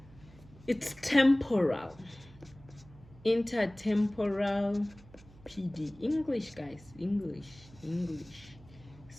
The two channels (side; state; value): right; noise; hum, 22 dB below the sound